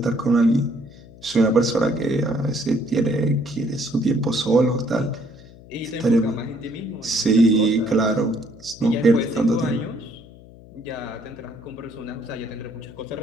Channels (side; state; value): left; noise; hum, 21 dB below the sound